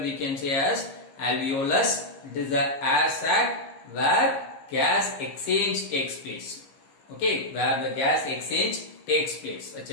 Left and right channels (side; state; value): right; late; 15 ms